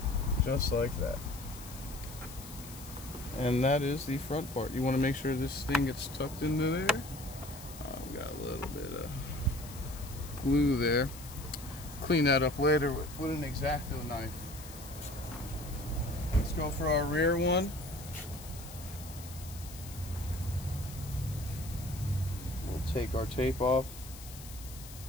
Just like that. And that is the front part. You want to make sure this thing gets tucked into there. We got a little bit of glue there. Clean that up later with an X-Acto knife. Let's go for our rear one. Take our tape off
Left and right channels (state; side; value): noise; left; hiss, 15 dB below the sound